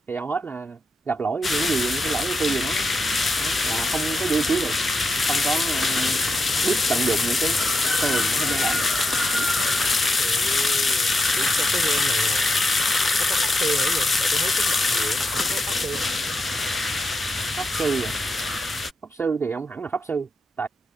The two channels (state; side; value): normal; both; correlation 0.85